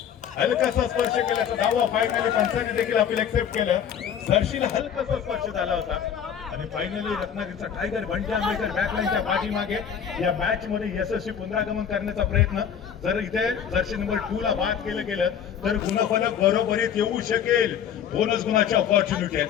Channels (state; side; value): quieter; right; 8.4 dB